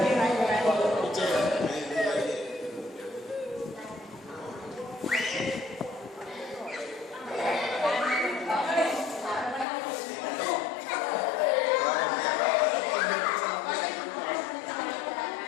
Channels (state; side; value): drops out; right; at 9.7 s